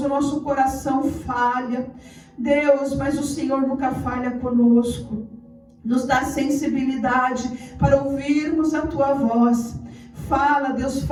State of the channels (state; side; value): identical; both; correlation 1.00